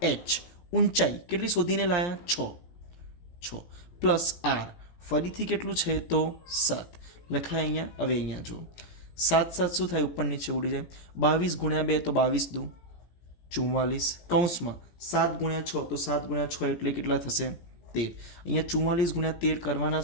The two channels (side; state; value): right; late; 17 ms